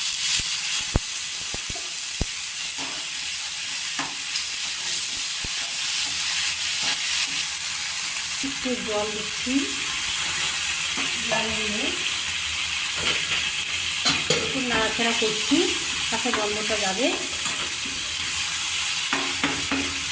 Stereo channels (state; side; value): identical; both; correlation 1.00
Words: একটু জল দিচ্ছি, জল দিয়ে একটু নাড়াচাড়া করছি, তাতে গন্ধটা যাবে।